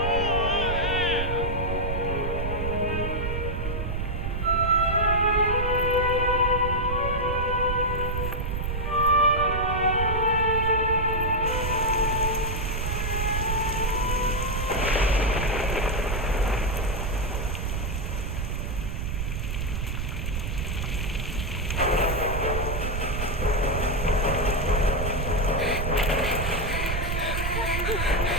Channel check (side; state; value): right; noise; rumble, 2 dB below the sound